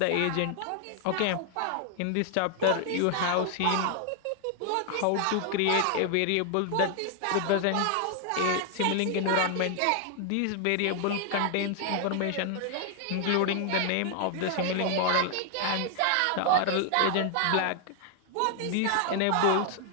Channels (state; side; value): different; both; correlation 0.00